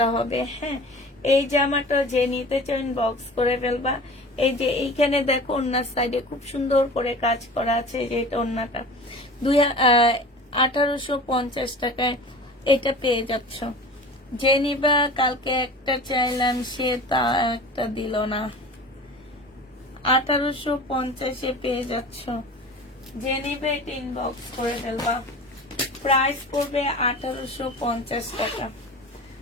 হবে। হ্যাঁ, এই জামাটা যে নিতে চান বক্স করে ফেলবা। এই যে এইখানে দেখো ওড়নার সাইডে খুব সুন্দর করে কাজ করা আছে। যে এটা ওড়নাটা 1850 টাকায় এটা পেয়ে যাচ্ছ। যে নিবা, কালকে একটা চাইলাম সে তা একটা দিল না। 1850-এ পেয়ে যাচ্ছ। যে নিবে এটা ইনবক্স করে ফেলবা। প্রাইস পড়বে 1850 টাকা।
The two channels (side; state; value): both; normal; correlation 0.38